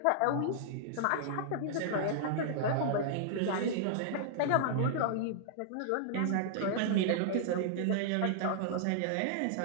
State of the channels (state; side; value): different; both; correlation -0.01